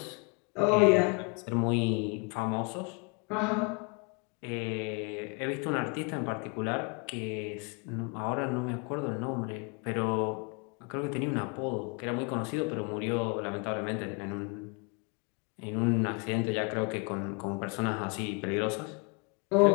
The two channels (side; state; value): right; quieter; 33.6 dB